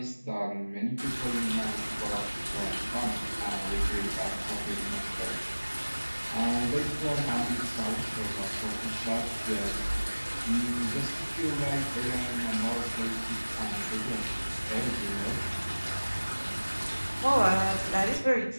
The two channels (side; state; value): both; inverted; correlation -1.00